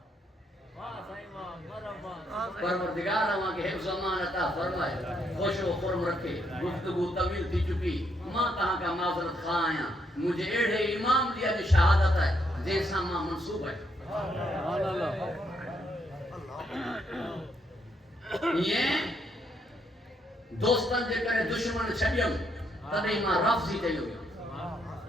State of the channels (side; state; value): both; normal; correlation 0.75